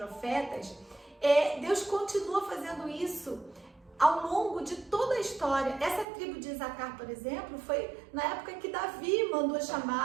Deus continua fazendo isso ao longo de toda a história. Essa tribo de Isacar, por exemplo, foi na época que Davi mandou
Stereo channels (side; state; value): left; drops out; at 6.1 s